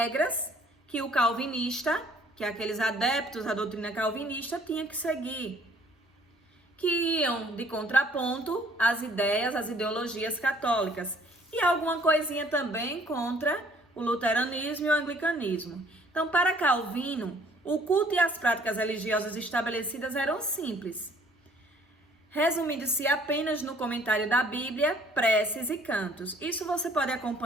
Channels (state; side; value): normal; both; correlation 0.58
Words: que o calvinista, que aqueles adeptos à doutrina calvinista, tinham que seguir, que iam de contraponto às ideias, às ideologias católicas, e alguma coisinha também contra o luteranismo e o anglicanismo. Então, para Calvino, o culto e as práticas religiosas estabelecidas eram simples, resumindo-se apenas no comentário da Bíblia, preces e cantos. Isso você pode